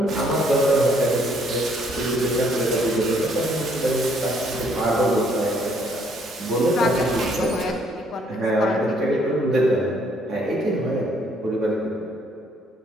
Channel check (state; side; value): normal; both; correlation 0.66